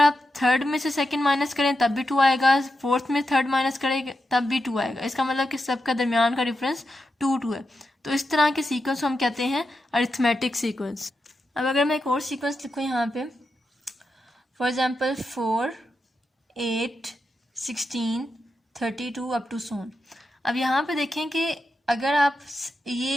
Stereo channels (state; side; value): normal; both; correlation 0.87